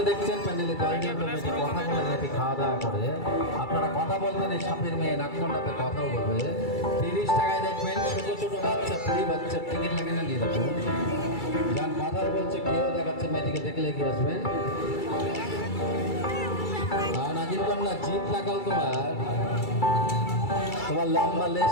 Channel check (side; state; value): right; late; 2.3 ms